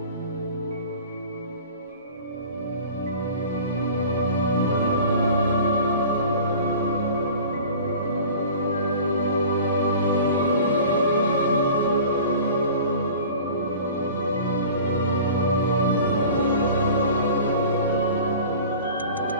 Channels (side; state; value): both; inverted; correlation -0.42